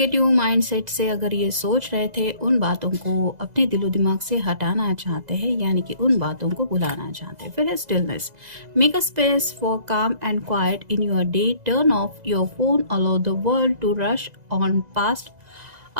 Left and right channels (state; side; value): late; left; 2.0 ms